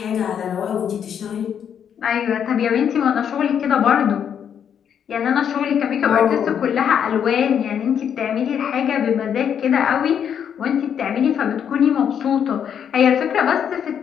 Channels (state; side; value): quieter; right; 8.3 dB